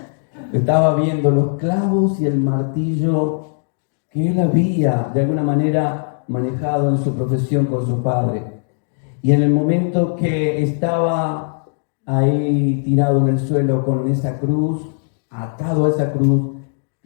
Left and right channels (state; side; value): silent; right; digital silence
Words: Estaba viendo los clavos y el martillo que él había de alguna manera manejado en su profesión con su padre. Y en el momento que estaba ahí tirado en el suelo con esa cruz, atado a esa cruz,